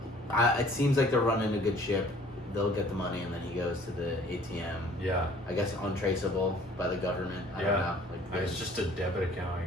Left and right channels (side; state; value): both; normal; correlation 0.53